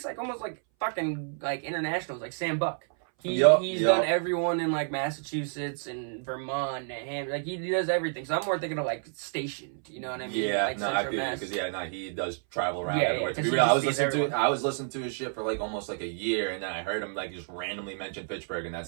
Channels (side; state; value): left; silent; 58 dB below the other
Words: like almost like fucking like international, like Sam Buck. He's done everyone in like Massachusetts and Vermont and like he does everything. So I'm more thinking of like stationed, you know what I mean? Yeah, like I feel because he does travel around everywhere. To be real, I was listening to his shit for like almost like a year, and then I heard him like just randomly mention Fitchburg, and that's